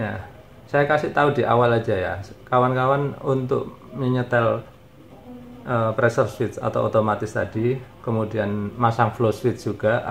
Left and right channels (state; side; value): identical; both; correlation 1.00